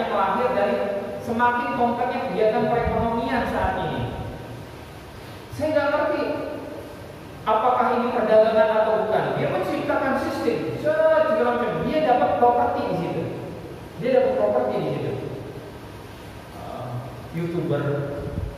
lahir dari semakin kompleknya kegiatan perekonomian saat ini. Saya nggak ngerti apakah ini perdagangan atau bukan. Dia menciptakan sistem, segala macam. Dia dapat properti di situ. YouTuber,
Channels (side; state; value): both; identical; correlation 1.00